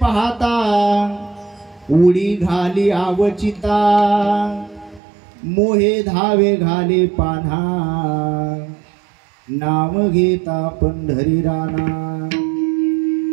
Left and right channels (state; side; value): drops out; left; at 5.0 s